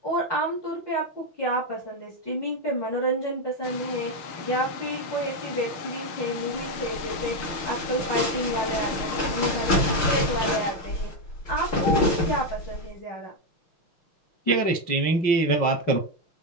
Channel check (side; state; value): right; late; 6.5 ms